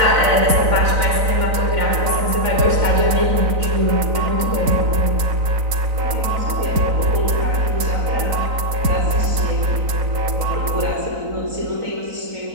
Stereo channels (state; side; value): late; left; 4.0 ms